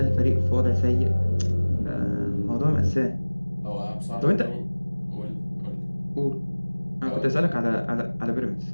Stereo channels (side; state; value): both; inverted; correlation -1.00